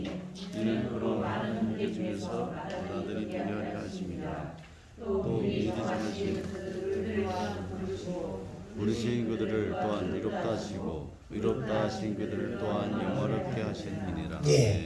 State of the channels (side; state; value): both; identical; correlation 1.00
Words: 이는 그로 많은 문제 중에서 나들이 되려하려 하심이라. 또 미리 정하신 부르신 그들을 또한 이롭다 하시고 의롭다 하신 그들을 또한 영화롭게 하셨느니라.